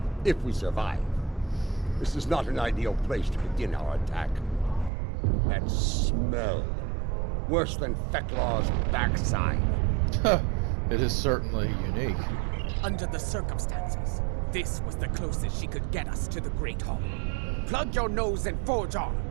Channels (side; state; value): left; drops out; at 4.9 s